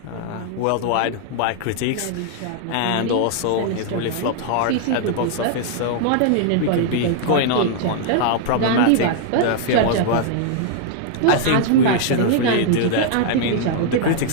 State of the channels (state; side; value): different; both; correlation -0.01